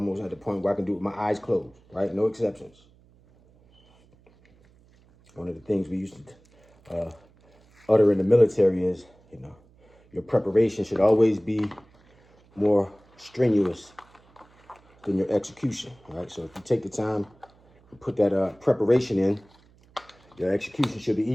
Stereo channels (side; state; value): right; noise; hum, 30 dB below the sound